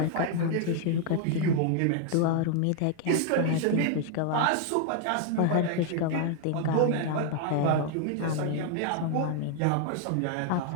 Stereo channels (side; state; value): both; different; correlation 0.00